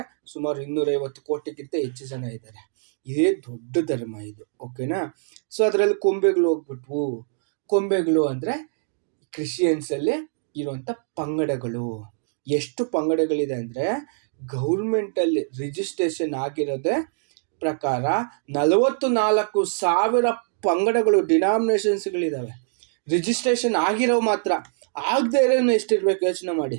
ಸುಮಾರು 250 ಕೋಟಿಗಿಂತ ಹೆಚ್ಚು ಜನ ಇದ್ದಾರೆ. ಇದೇ ದೊಡ್ಡ ಧರ್ಮ ಇದು. ಓಕೆನಾ? ಸೊ ಅದರಲ್ಲಿ ಕೊಂಬೆಗಳು ಹೋಗ್ಬಿಟ್ವು. ಕೊಂಬೆಗಳು ಅಂದ್ರೆ ಕ್ರಿಶ್ಚಿಯನ್ಸ್ ಅಲ್ಲಿ ಇರುವಂತ ಪಂಗಡಗಳು. ಎಷ್ಟು ಪಂಗಡಗಳಿದೆ ಅಂದ್ರೆ ಗೌರ್ಮೆಂಟ್ ಅಲ್ಲಿ ರಿಜಿಸ್ಟ್ರೇಷನ್ ಆಗಿರೋದೇ ಪ್ರಕಾರ 44,000 ಪಂಗಡಗಳು, ಡಿನಾಮಿನೇಷನ್ಸ್ಗಳಿದಾವೆ. ರಿಜಿಸ್ಟ್ರೇಷನ್ ಆಗಿರೋ ಮಾತ್ರ, ಆಗದೆ ಇರೋನು ಎಷ್ಟಿರ್ಬೇಕು ಯೋಚನೆ ಮಾಡಿ.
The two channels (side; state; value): left; silent; digital silence